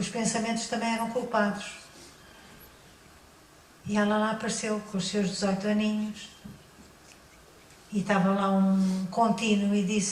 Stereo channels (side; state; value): both; identical; correlation 1.00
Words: pensamentos também eram culpados. E ela lá apareceu com os seus 18 aninhos e estava lá um contínuo e